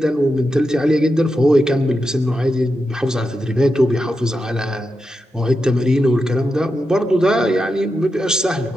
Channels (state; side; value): normal; both; correlation 0.88